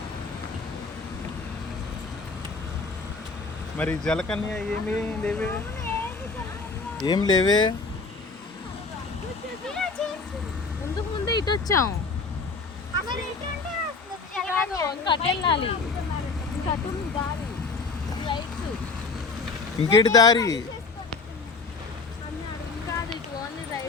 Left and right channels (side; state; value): right; quieter; 4.3 dB